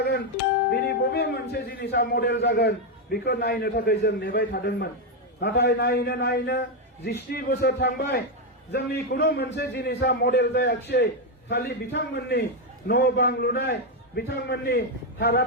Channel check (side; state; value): both; normal; correlation 0.04